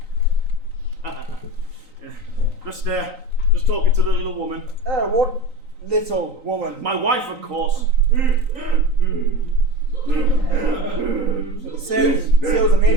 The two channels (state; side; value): late; left; 3.9 ms